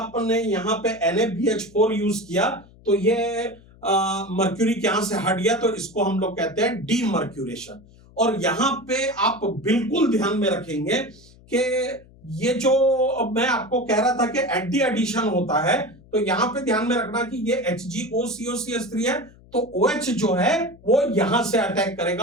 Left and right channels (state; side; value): noise; left; hum, 25 dB below the sound